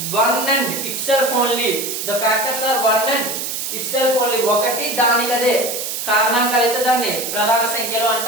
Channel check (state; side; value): noise; right; hiss, 4 dB below the sound